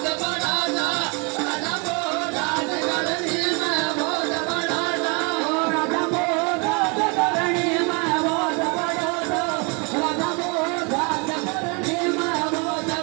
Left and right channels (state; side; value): quieter; left; 32.3 dB